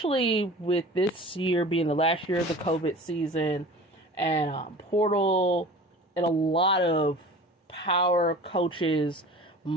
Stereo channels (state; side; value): normal; both; correlation 0.40